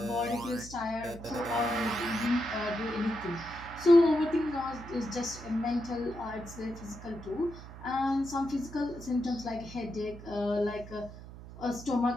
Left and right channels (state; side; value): noise; right; hum, 14 dB below the sound